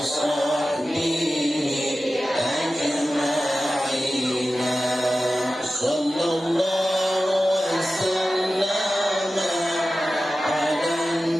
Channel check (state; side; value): normal; both; correlation 0.94